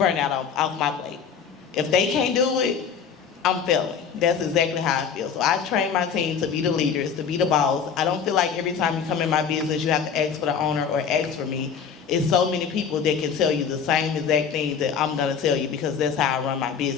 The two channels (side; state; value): right; quieter; 6.8 dB